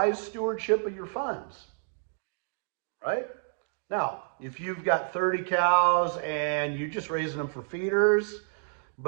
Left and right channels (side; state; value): left; silent; digital silence